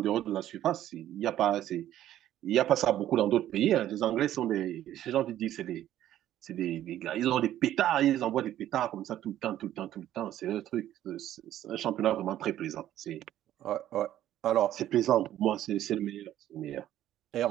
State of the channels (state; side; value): quieter; left; 12.5 dB